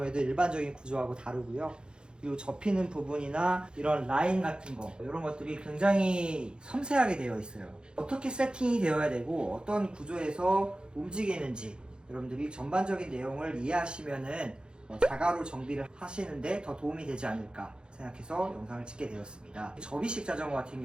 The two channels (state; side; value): late; left; 0.050 ms